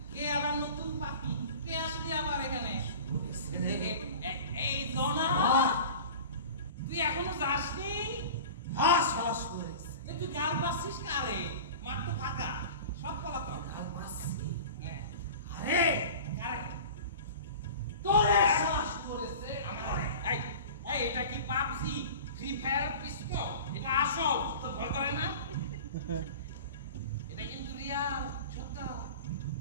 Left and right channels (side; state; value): both; inverted; correlation -0.37